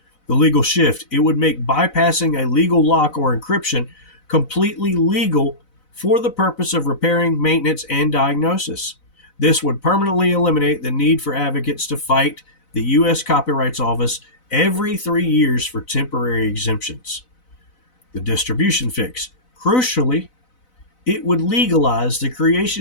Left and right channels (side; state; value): right; late; 4.0 ms